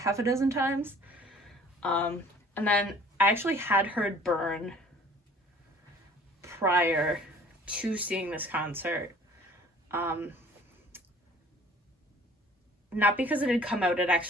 a dozen times. And then I actually had heard Burn prior to seeing this concert. Not because it had come out, it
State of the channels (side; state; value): both; normal; correlation 0.51